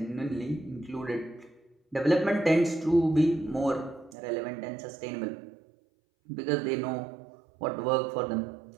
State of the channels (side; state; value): left; drops out; at 4.2 s